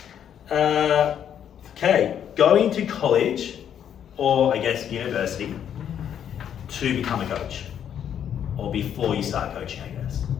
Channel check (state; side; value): quieter; right; 9.2 dB